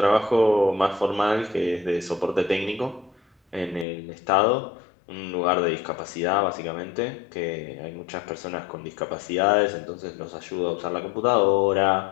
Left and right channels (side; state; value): right; drops out; at 3.9 s